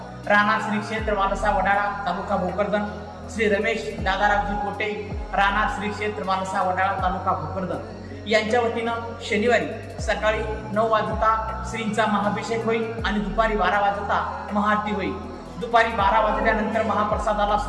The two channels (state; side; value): identical; both; correlation 1.00